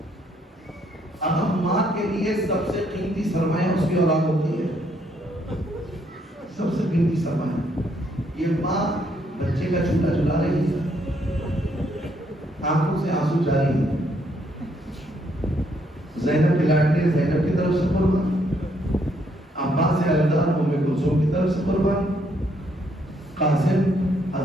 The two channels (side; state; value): both; normal; correlation 0.71